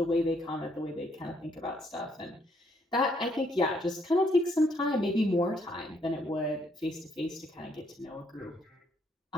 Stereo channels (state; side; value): normal; both; correlation 0.70